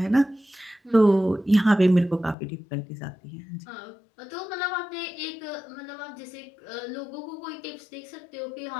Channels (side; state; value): right; drops out; at 2.4 s